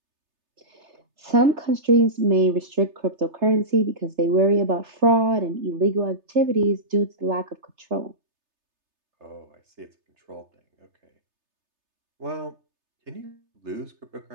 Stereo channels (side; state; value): left; late; 3.3 ms